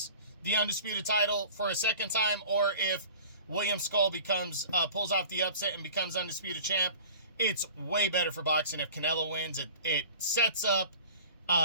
the undisputed title for a second time, or if William Scull pulls off the upset and becomes undisputed champ? It's way better for boxing if Canelo wins. It sets up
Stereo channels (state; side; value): inverted; both; correlation -0.43